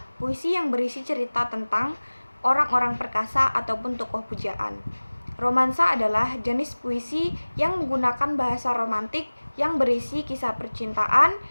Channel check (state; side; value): inverted; both; correlation -1.00